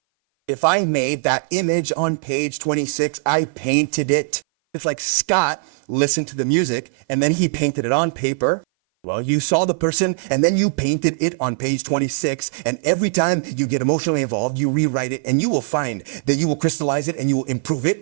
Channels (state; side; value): silent; left; 58 dB below the other